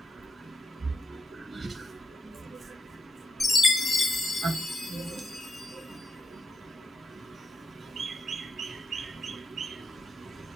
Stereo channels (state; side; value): normal; both; correlation 0.82